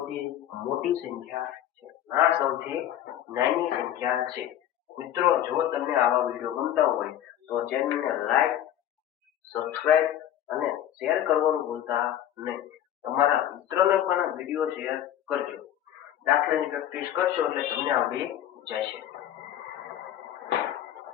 મોટી સંખ્યા છે આ સૌથી નાની સંખ્યા છે મિત્રો જો તમને આવા વિડીયો ગમતા હોય તો ચેનલને લાઈક સબસ્ક્રાઇબ અને શેર કરવાનું ભૂલતા નહીં તમારા મિત્રોને પણ વિડીયો શેર કરજો દાખલાની પ્રેક્ટિસ કરશો એટલે તમને આવડી જશે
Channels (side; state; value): right; quieter; 11.4 dB